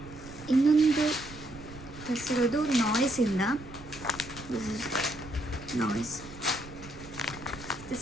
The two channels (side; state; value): right; noise; rumble, 16 dB below the sound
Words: ಇನ್ನೊಂದು ತರಿಸಿರೋದು ನಾಯ್ಸಿಂದ. This is Nice.